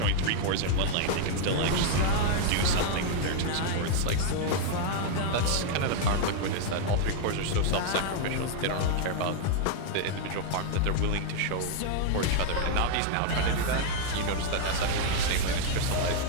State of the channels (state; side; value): different; both; correlation 0.00